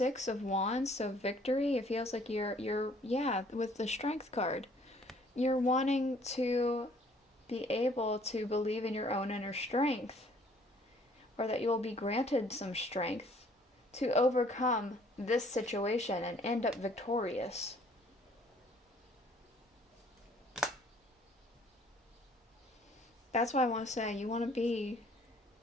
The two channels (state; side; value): normal; both; correlation 0.59